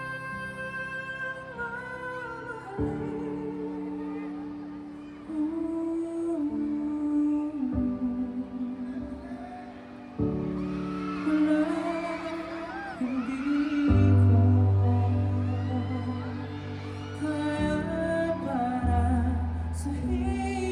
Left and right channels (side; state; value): both; identical; correlation 1.00